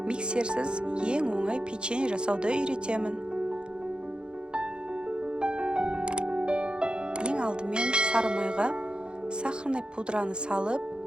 миксерсіз ең оңай печенье жасауды үйретемін. Ең алдымен сары майға сахарный пудраны салып,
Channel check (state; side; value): late; left; 0.051 ms